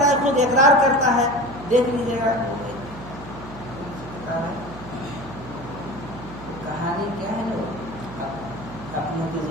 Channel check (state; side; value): noise; right; hum, 14 dB below the sound